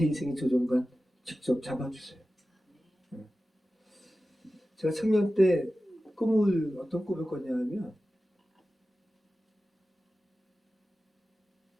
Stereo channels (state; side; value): normal; both; correlation 0.95